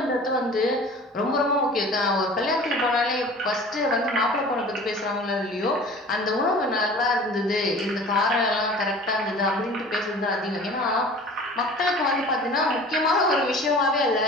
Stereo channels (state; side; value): normal; both; correlation 0.43